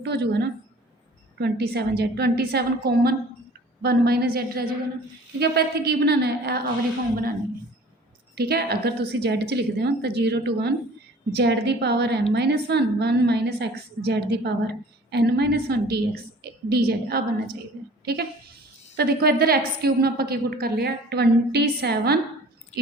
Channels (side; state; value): both; normal; correlation 0.48